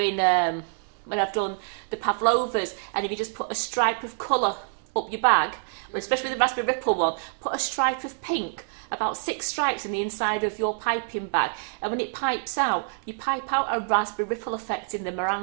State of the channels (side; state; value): left; silent; digital silence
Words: when I've done the pavlovas, and if you just put a stripe of colour up your bag, especially with the raspberry ripple one, put a stripe of pink, about 6 stripes in the inside of your piping bag, and when it pipes out, you pipe out a raspberry ripple effect in the